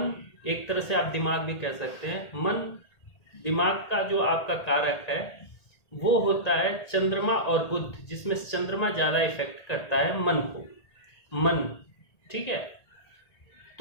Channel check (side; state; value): right; late; 1.8 ms